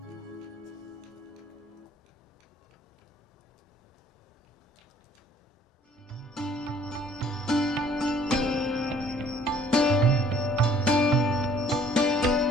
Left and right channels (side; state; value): both; normal; correlation 0.58